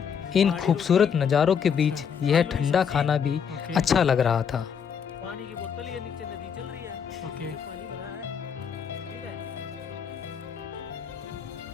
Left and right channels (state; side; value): quieter; right; 7.2 dB